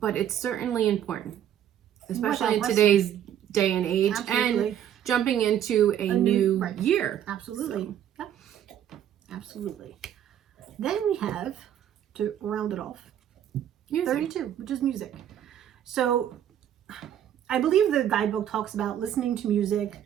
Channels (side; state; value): left; quieter; 10.3 dB